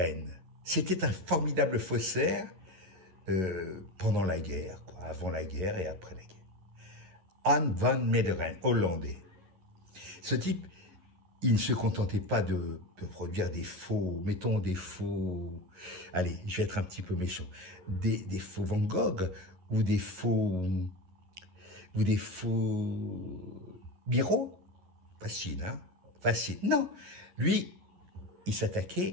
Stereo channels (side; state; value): left; late; 11 ms